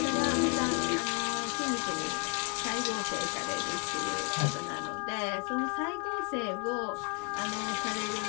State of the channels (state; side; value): quieter; right; 31.6 dB